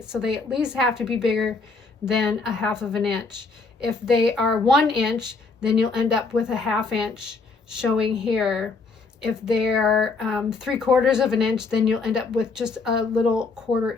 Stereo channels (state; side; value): quieter; right; 4.1 dB